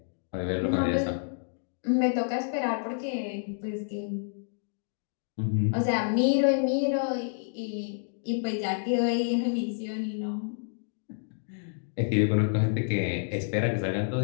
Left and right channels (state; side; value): silent; right; digital silence